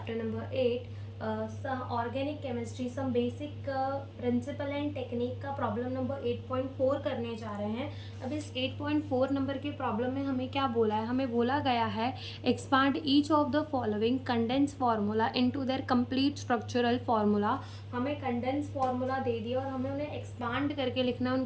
number 8 organic chemistry some basic principle and technique का problem number 8.4 करने जा रहे हैं। अब इस 8.4 नंबर के प्रॉब्लम में हमें क्या बोला है? हमें बोला गया है expand each of the following condense formula into their complete structural formula. हमें कंडेंस फार्मूला दे दिया और हमें उन्हें एक्सपांड करके लिखना है,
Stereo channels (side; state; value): both; identical; correlation 1.00